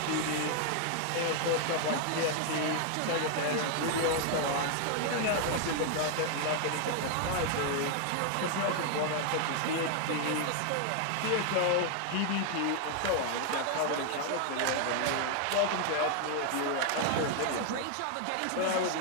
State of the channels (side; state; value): both; different; correlation 0.00